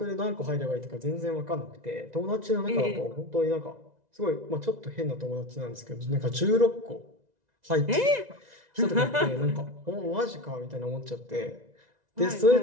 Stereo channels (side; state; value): left; late; 2.0 ms